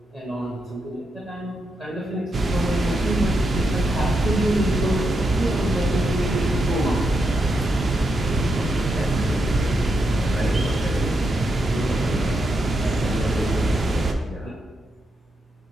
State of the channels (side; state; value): both; normal; correlation 0.83